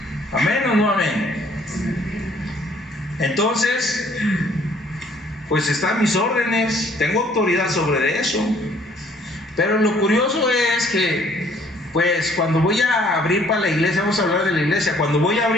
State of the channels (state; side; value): normal; both; correlation 0.60